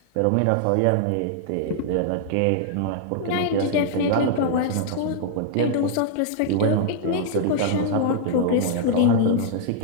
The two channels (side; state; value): both; different; correlation -0.01